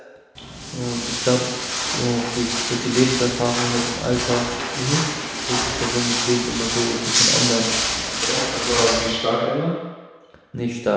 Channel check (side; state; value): both; identical; correlation 1.00